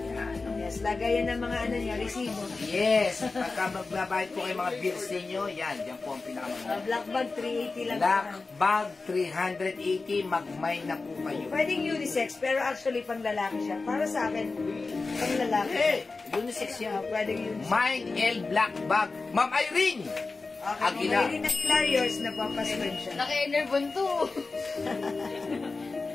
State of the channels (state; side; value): quieter; right; 3.8 dB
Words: Yes, lagayan ng mga ano niya, resibo. Yes. Pagka magbabayad po kayo mga bills ninyo, yan. Yan po ang pinakamaganda. Black bag, 380 lang. Black bag, 380. Magmay na po kayo. Pwedeng unisex, pero actually pang lalaki siya. Para sa akin, pang lalaki. Eh, unisex yan. Pwedeng unisex. Mine L Black Bag. Ma'am Irene! Okay, Aguila. kung may Hilarious na papasman siya. Naka-enervon to.